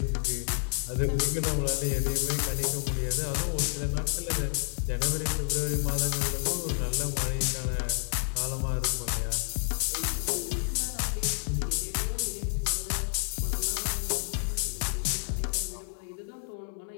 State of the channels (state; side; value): silent; right; 58 dB below the other